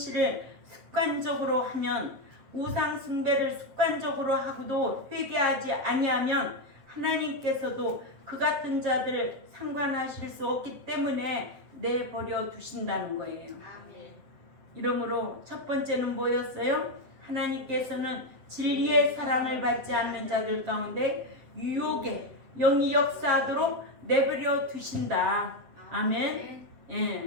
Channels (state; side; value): late; left; 7.7 ms